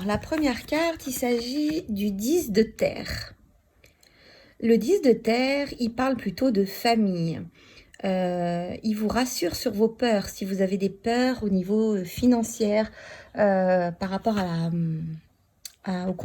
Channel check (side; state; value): both; identical; correlation 1.00